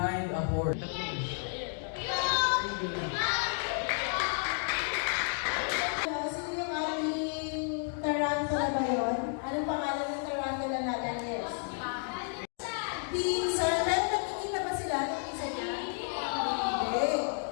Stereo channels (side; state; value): right; silent; 57 dB below the other